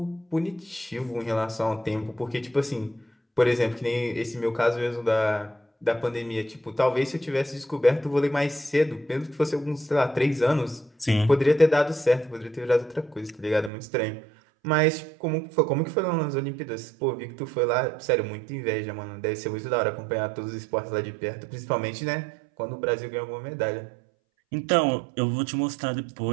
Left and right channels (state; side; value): drops out; left; at 13.7 s